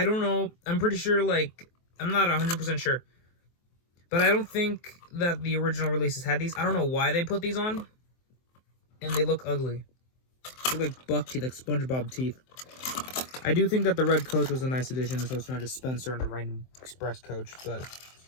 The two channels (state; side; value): late; right; 23 ms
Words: don't know, I'm pretty sure, like, I'm not 100% sure, but I don't think that the original releases had these. I don't know why they put these on, and they look ugly. They look like buck teeth, like SpongeBob teeth. I do think that the red coach was a nice addition, so it's not just Spencer and a random express coach, but